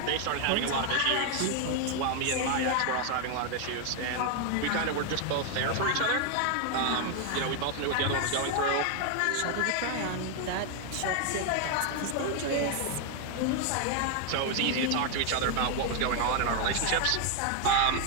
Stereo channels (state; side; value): different; both; correlation 0.00